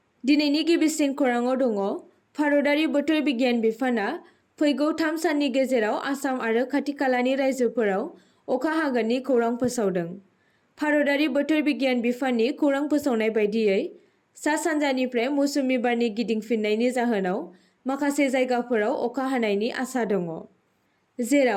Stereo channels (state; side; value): identical; both; correlation 1.00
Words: दिनैनि गिबिसिन खौराङाव दङ भारतारि बोथोर बिगियान बिफाना फैगौ 3 साननि गेजेराव आसाम आरो खाथि-खालानि रायजोफोराव अखा हागोननि खौरां फोसावदों। भारतारि बोथोर बिगियान बिफाननि खौरां फोसावनाय बायदियै सा-सानजानिफ्राय मौसुमि बारनि गिदिंफिननायनि जाहोनाव माखासे जायगाफोराव अखा हानायनि आसा दङ,